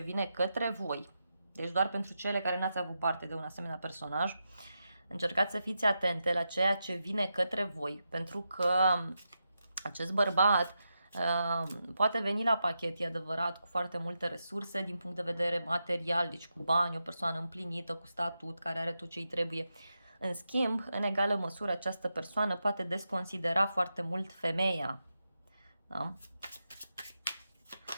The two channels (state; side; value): inverted; both; correlation -0.87